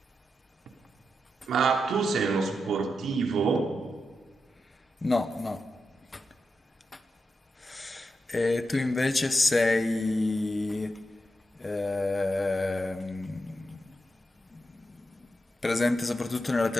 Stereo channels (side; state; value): both; normal; correlation 0.87